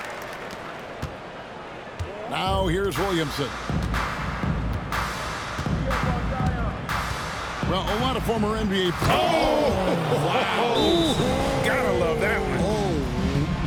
Now here's Williamson. Well, a lot of former NBA players. Oh, wow. Gotta love that one.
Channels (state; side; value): identical; both; correlation 1.00